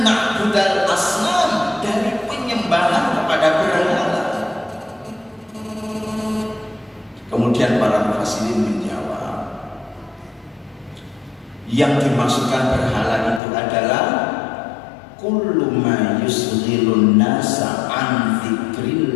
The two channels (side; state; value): right; drops out; at 13.4 s